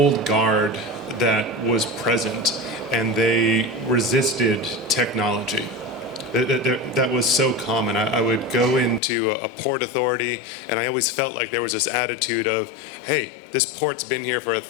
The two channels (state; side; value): drops out; right; at 9.0 s